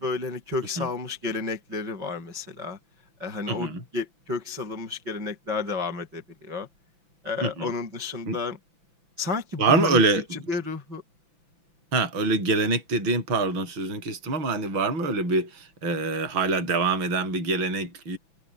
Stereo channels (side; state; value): left; late; 6.0 ms